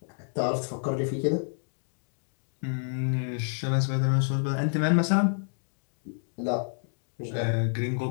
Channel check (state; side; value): silent; right; digital silence